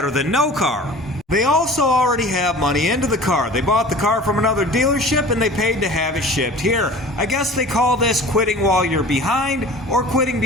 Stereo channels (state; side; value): normal; both; correlation 0.41